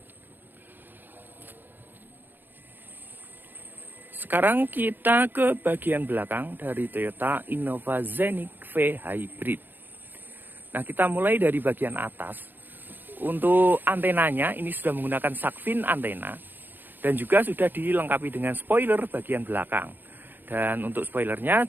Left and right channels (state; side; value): late; left; 0.092 ms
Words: Sekarang kita ke bagian belakang dari Toyota Innova Zenith V hybrid. Nah, kita mulai dari bagian atas. Untuk antenanya ini sudah menggunakan shark fin antena dan juga sudah dilengkapi dengan spoiler bagian belakang. Dan untuk spoilernya